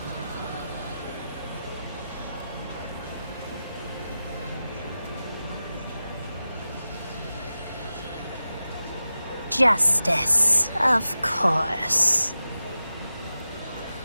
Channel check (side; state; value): both; inverted; correlation -0.93